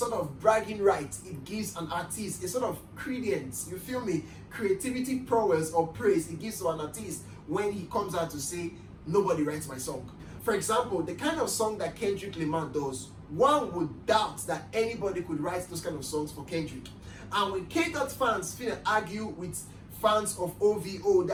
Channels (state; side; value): identical; both; correlation 1.00